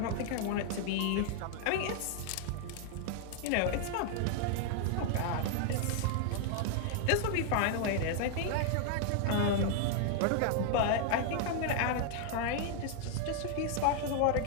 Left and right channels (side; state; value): both; different; correlation 0.00